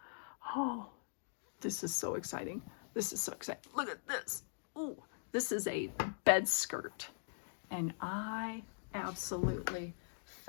Oh, this is so exciting. This is so exciting. Look at this. Ooh, this is a bed skirt. And I absolutely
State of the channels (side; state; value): right; silent; digital silence